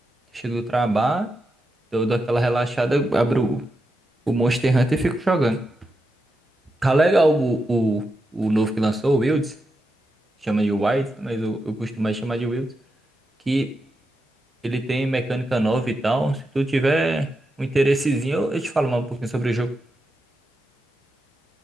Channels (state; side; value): normal; both; correlation 0.87